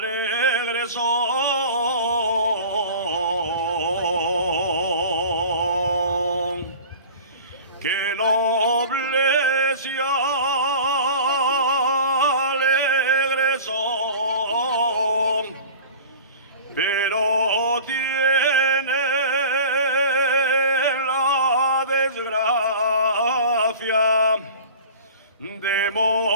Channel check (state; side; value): inverted; both; correlation -0.39